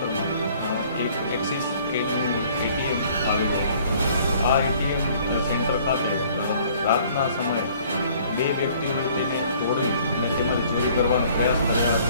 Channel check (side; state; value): both; inverted; correlation -0.56